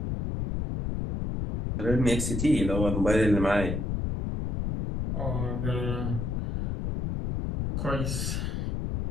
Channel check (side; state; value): left; noise; rumble, 2 dB below the sound